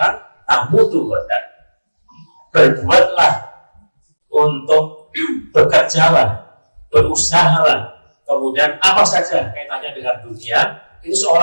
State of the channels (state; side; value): inverted; both; correlation -1.00